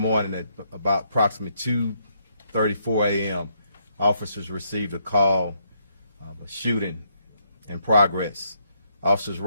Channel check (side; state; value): both; inverted; correlation -0.75